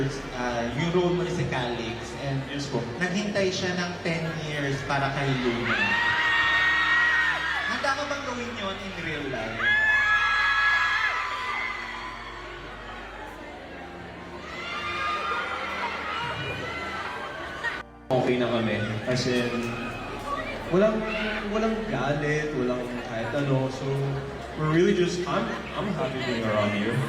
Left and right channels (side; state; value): both; identical; correlation 1.00